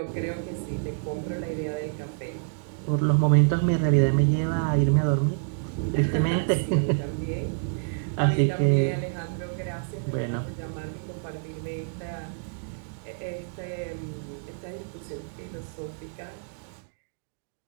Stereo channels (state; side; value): silent; left; digital silence